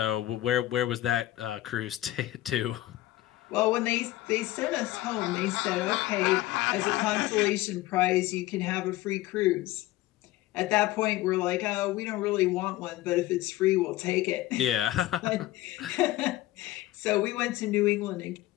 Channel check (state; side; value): quieter; right; 16.4 dB